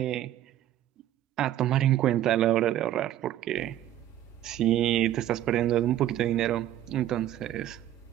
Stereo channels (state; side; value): quieter; left; 12.5 dB